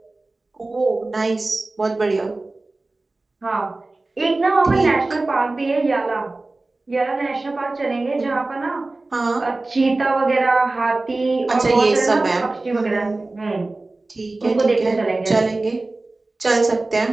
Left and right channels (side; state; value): left; quieter; 3.1 dB